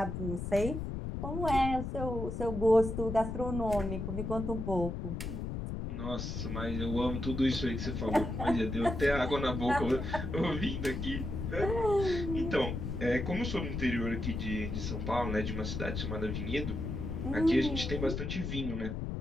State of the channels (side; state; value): left; noise; rumble, 4 dB below the sound